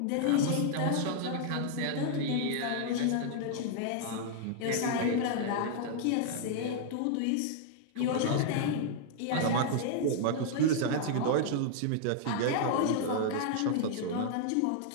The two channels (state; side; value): different; both; correlation -0.01